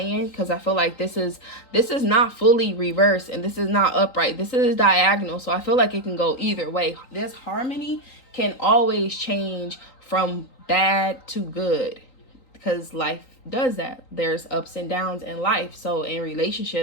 because I feel like this is not fully reversed and this is not upright. This is diagonal. So I feel like it can go either way. This harmony can always change from bad to good, because life does that. There's ups and downs in life. So in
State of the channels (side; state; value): right; late; 3.9 ms